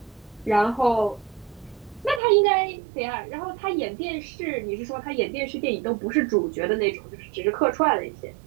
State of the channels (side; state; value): left; drops out; at 2.2 s